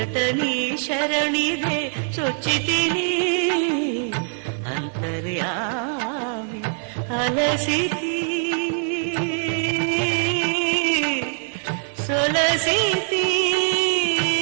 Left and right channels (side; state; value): left; silent; 63 dB below the other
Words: నీ శరణిదే చొచ్చితిని అంతర్యామి అలసితి సొలసితి